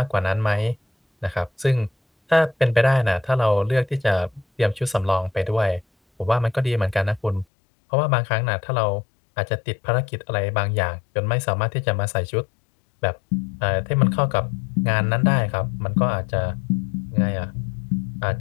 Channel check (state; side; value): drops out; right; at 7.5 s